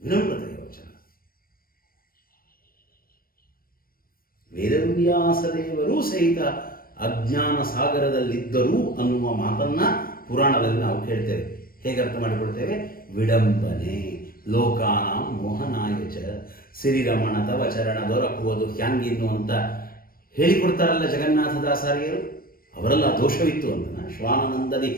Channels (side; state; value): right; late; 0.43 ms